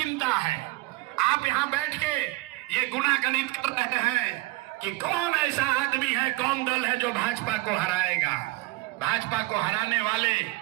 है। आप यहाँ बैठ के ये गुनागणित कर रहे हैं कि कौन ऐसा आदमी है, कौन दल है जो भाजपा को हराएगा। भाजपा को हराने वाले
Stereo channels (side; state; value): left; quieter; 20.5 dB